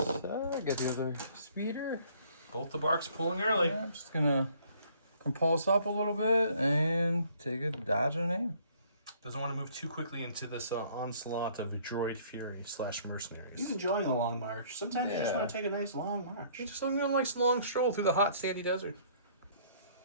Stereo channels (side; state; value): both; inverted; correlation -0.59